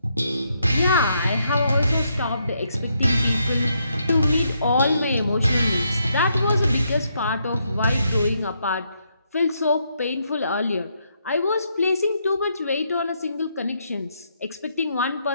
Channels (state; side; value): inverted; both; correlation -0.77